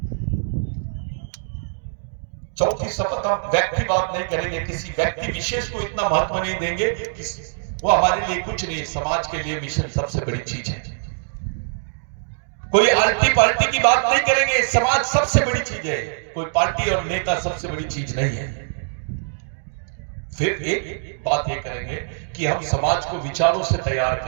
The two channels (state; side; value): silent; left; digital silence